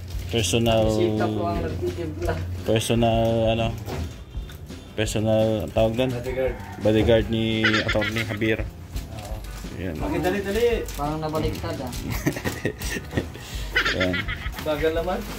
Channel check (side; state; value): both; identical; correlation 1.00